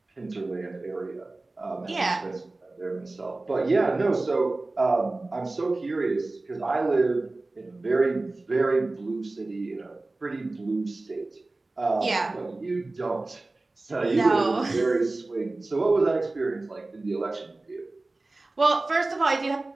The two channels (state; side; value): quieter; left; 3.1 dB